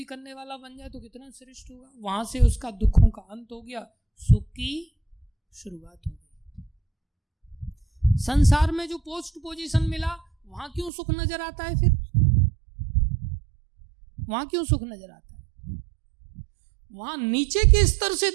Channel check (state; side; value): drops out; left; at 10.9 s